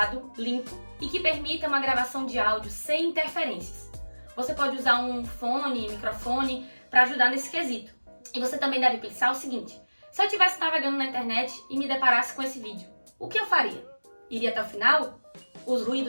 limpo e que permita uma gravação de áudio sem interferências. Você pode usar um fone, microfone para ajudar nesse quesito. E você também deve pensar o seguinte: se eu estivesse navegando na internet e me deparasse com esse vídeo, o que eu faria? Iria até o final? Os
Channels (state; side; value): inverted; both; correlation -1.00